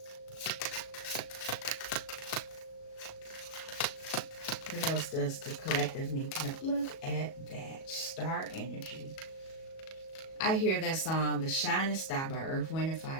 What else does the collective need to know? Look at that. Star energy. I hear that song, The Shining Star by Earth, Wind, and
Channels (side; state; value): right; late; 37 ms